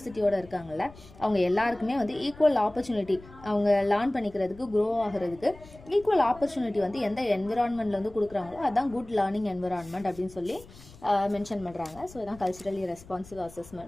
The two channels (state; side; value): noise; left; rumble, 20 dB below the sound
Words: இருக்காங்கல்ல, அவங்க எல்லாருக்குமே வந்து ஈக்குவல் ஆப்பர்ச்சுனிட்டி, அவங்க லேர்ன் பண்ணிக்கிறதுக்கு, க்ரோ ஆகிறதுக்கு ஈக்குவல் ஆப்பர்ச்சுனிட்டி வந்து எந்த என்விரான்மெண்ட்டில் வந்து கொடுக்குறாங்களோ அதுதான் குட் லேர்னிங் என்விரான்மெண்ட் அப்படின்னு சொல்லி மென்ஷன் பண்ணுறாங்க. ஸோ இதுதான் culturally responsive